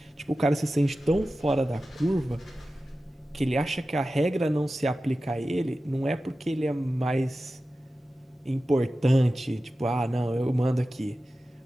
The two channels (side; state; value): both; normal; correlation 0.94